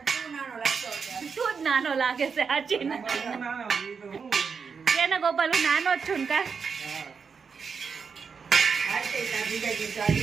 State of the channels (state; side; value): quieter; left; 5.7 dB